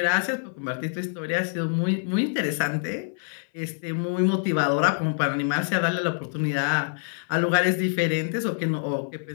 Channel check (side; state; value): right; silent; 58 dB below the other